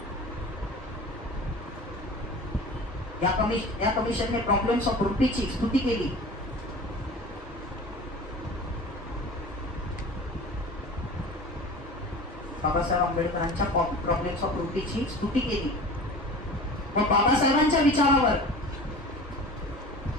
या कमिशनने प्रॉब्लेम्स ऑफ रुपीची स्तुती केली. बाबासाहेब आंबेडकरांच्या प्रॉब्लेम्स ऑफ रुपीची स्तुती केली व बाबासाहेबांच्या विचारावर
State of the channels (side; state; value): both; normal; correlation 0.38